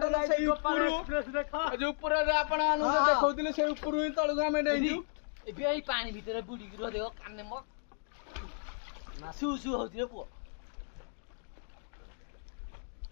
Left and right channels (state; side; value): silent; right; digital silence